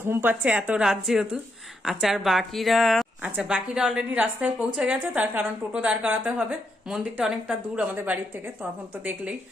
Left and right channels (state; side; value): normal; both; correlation 0.80